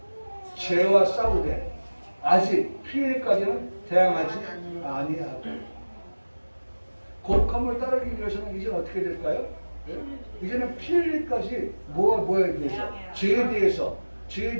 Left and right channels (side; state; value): both; inverted; correlation -1.00